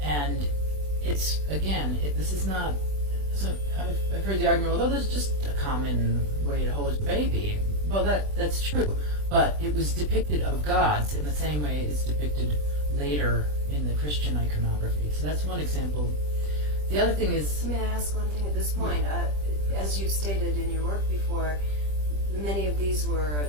And it's, again, this is not, so I've heard the argument, well, that's just a common way to hold a baby. Well, that's true, but it was depicted of gods in the same way it's depicted later in the Christian iconography. So that's one example. The other thing is... May I ask one thing at this point? As you've stated in your work before, many of these were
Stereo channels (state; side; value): late; left; 20 ms